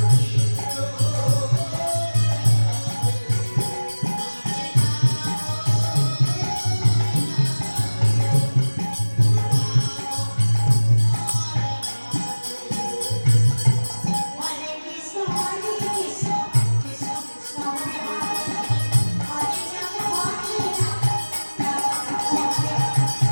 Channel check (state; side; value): inverted; both; correlation -1.00